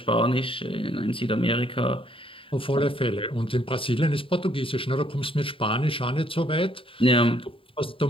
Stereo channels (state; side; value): late; right; 0.26 ms